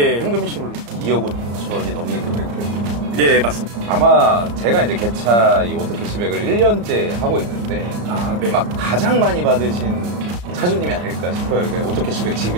현금 일시불로. 2억 5천이 넘는 금액을. 예, 맞습니다. 아마 제가 이제 개차 이 오토캐시백을 1년째 하고 있는데 네. 막 가장 많이 받으신 차주님이 아닐까 싶어요. 오토캐시백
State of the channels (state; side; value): late; left; 34 ms